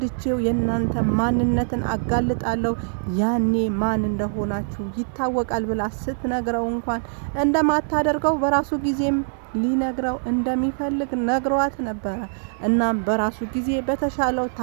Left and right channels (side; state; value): left; silent; digital silence